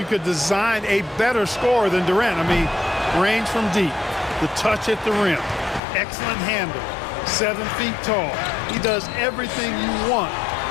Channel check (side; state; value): right; drops out; at 5.8 s